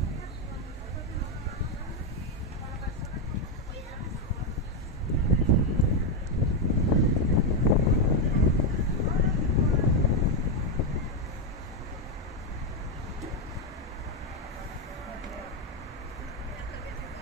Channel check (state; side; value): normal; both; correlation 0.05